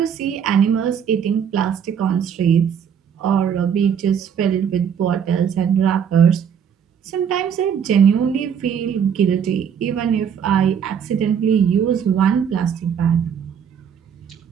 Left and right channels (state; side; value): quieter; left; 7.8 dB